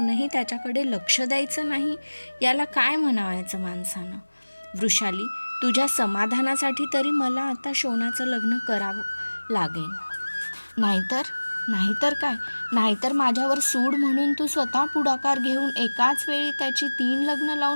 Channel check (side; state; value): both; inverted; correlation -1.00